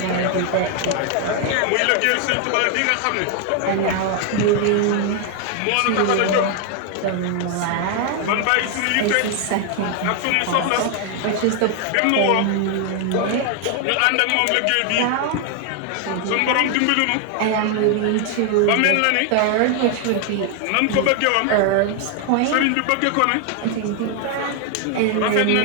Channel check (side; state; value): both; different; correlation 0.00